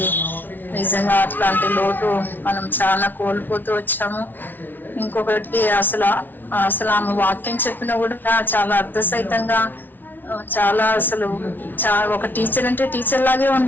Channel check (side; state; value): right; late; 0.088 ms